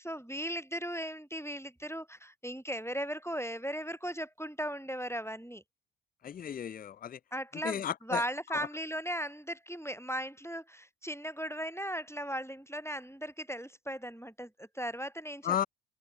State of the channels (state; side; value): normal; both; correlation 0.44